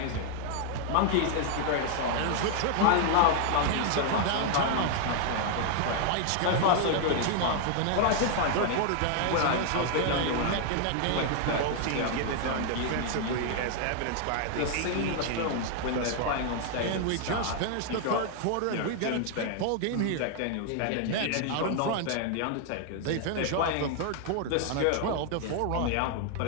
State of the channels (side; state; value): both; different; correlation 0.00